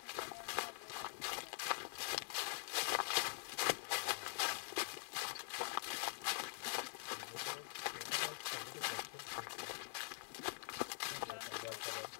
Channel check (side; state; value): right; silent; digital silence